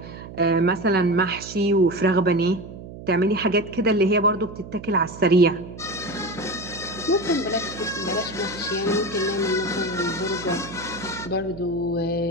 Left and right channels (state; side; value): noise; right; hum, 13 dB below the sound